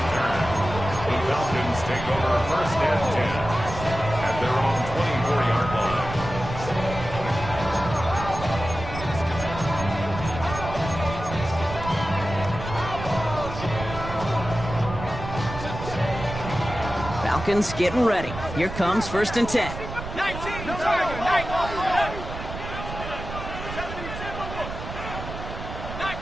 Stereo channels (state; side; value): noise; right; rumble, 9 dB below the sound